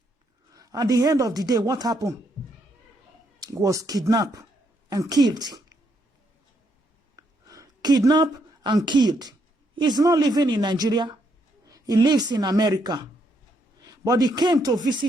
At the end of the day, what happened? He was kidnapped and killed. Kidnapped and killed. He's not living in Nigeria. He lives in America. But he came to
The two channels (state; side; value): normal; both; correlation 0.75